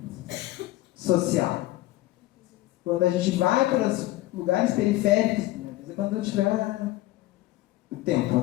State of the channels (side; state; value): right; quieter; 17.0 dB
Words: social. Quando a gente vai para os lugares periféricos, quando eu tiver o tempo,